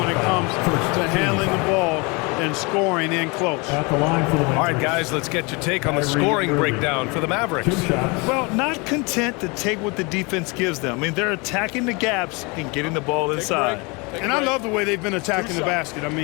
it comes to handling the ball and scoring in close. At the line for the Mavericks. All right, guys, let's get your take on the scoring breakdown for the Mavericks. 2 shots. Well, not content to take what the defense gives them. I mean, they're attacking the gaps and getting the ball inside. And I love the way they've been attacking the basket. I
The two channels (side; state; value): right; quieter; 28.6 dB